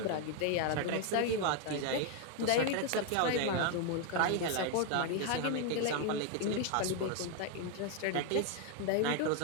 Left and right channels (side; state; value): both; different; correlation 0.01